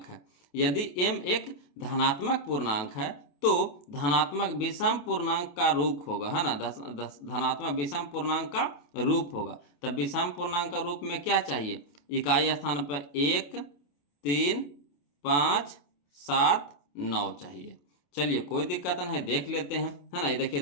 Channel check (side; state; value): right; late; 28 ms